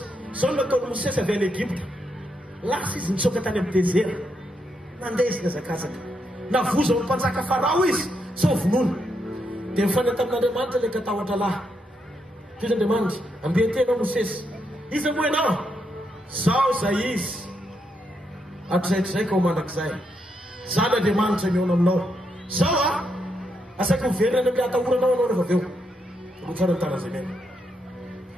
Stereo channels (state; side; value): normal; both; correlation 0.80